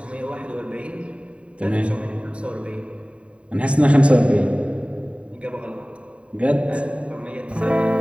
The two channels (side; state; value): left; late; 0.061 ms